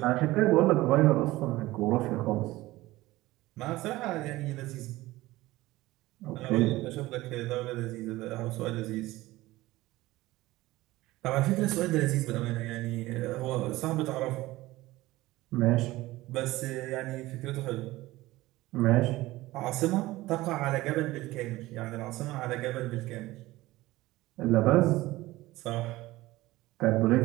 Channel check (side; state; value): left; quieter; 18.2 dB